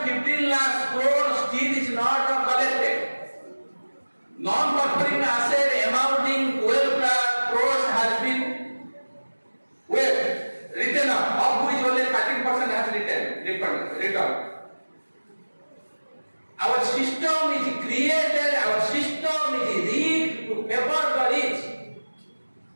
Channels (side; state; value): both; inverted; correlation -1.00